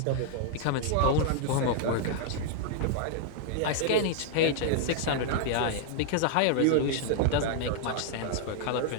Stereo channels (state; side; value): different; both; correlation 0.00